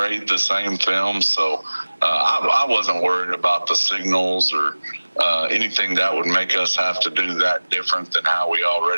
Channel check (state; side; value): inverted; both; correlation -1.00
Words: the same film. So I wasn't worried about the signals or anything that would make us have to do that different than how we